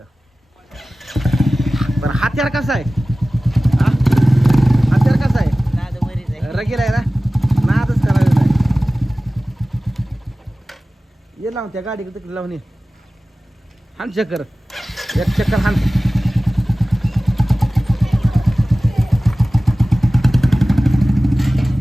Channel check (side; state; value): both; normal; correlation 0.97